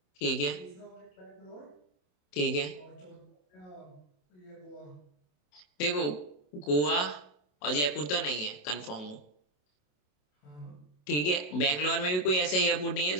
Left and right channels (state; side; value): late; right; 27 ms